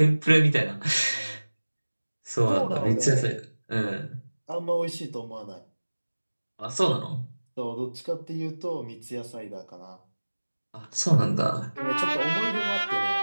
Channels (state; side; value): inverted; both; correlation -1.00